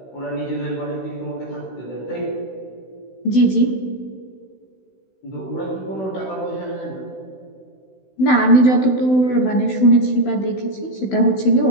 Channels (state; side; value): late; right; 16 ms